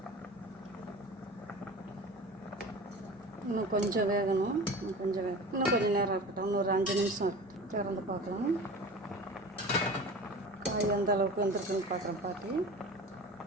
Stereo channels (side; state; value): both; normal; correlation 0.36